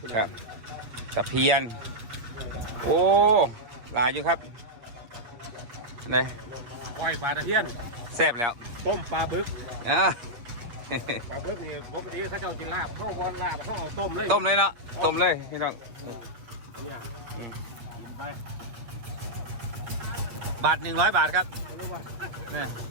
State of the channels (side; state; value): left; late; 8.6 ms